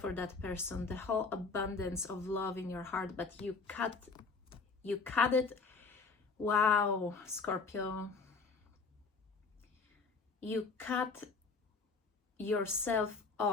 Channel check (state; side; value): quieter; right; 4.5 dB